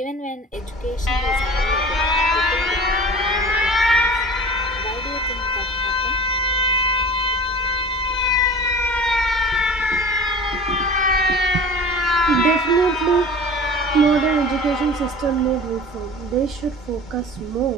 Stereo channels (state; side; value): normal; both; correlation 0.39